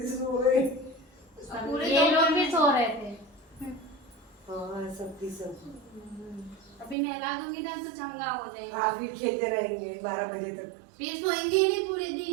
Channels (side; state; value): left; drops out; at 7.0 s